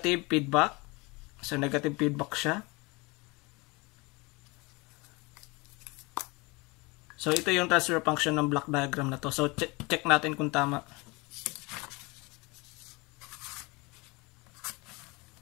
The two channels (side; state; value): right; quieter; 25.8 dB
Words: feedback. So negative feedback siya. So ito yung transfer function ng block diagram na to. So check natin kung tama.